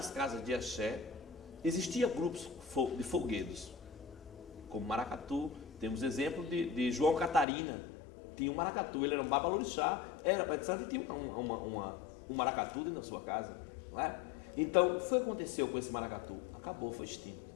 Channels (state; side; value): drops out; right; at 7.5 s